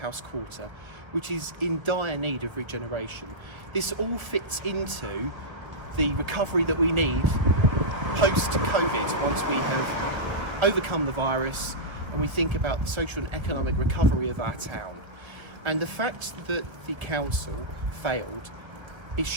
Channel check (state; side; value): late; left; 1.3 ms